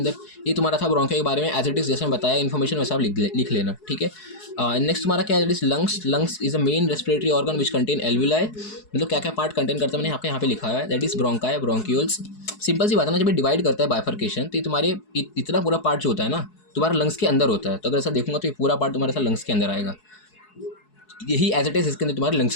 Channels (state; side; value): late; right; 4.7 ms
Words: ये तुम्हारा था ब्रोंकिया के बारे में, एज इट इज जैसे मैं बताया इन्फॉर्मेशन वैसा आप लिख लेना, ठीक है। नेक्स्ट तुम्हारा क्या है, lungs. Lungs is a main respiratory organ which contain alveoli, मतलब क्या क्या पार्ट कंटेन करता है मैंने आपके यहाँ पे लिखा है, that is bronchi, bronchioles. Simple सी बात है ना, जब डिवाइड करता है बाइफर्केशन, तो ये तुम्हारे इतना पूरा पार्ट जो होता है ना तुम्हारा लंग्स के अंदर होता है, तो अगर ऐसा देखूंगा तो ये पूरा पार्ट तुम्हारे साथ लंग्स के अंदर आएगा, यही एज इट इज इसके अंदर तुम्हारे